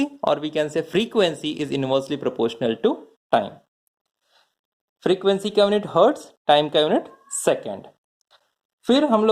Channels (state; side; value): identical; both; correlation 1.00